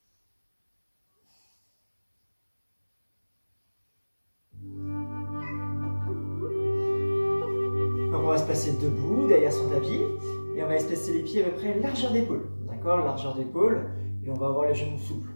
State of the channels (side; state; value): both; inverted; correlation -1.00